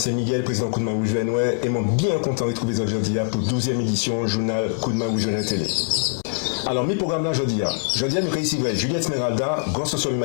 Miguel, président Coup de main Rouge Venoué, et moi bien content de retrouver aujourd'hui pour 12e édition journal Coup de main Rouge Venoué télé. Alors, mes programmes là aujourd'hui, nous avons ici Juliette Esmeralda, grand social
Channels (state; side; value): silent; right; digital silence